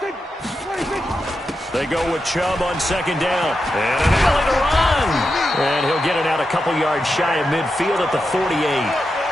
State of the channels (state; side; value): normal; both; correlation 0.88